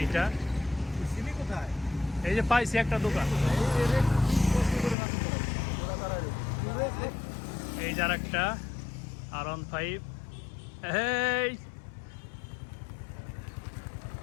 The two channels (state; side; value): drops out; right; at 5.0 s